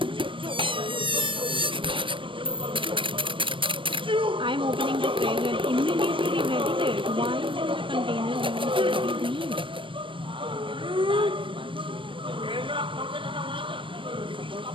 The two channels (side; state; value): left; late; 0.25 ms